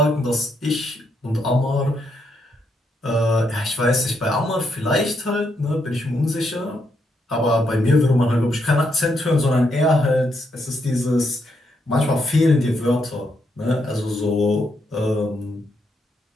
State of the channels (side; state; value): both; normal; correlation 0.78